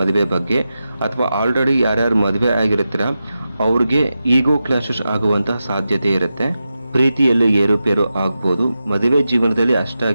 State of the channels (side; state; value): both; inverted; correlation -0.91